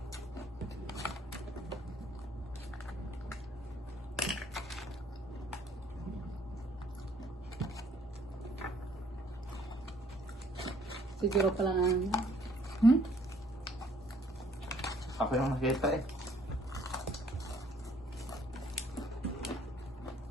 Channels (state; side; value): normal; both; correlation 0.62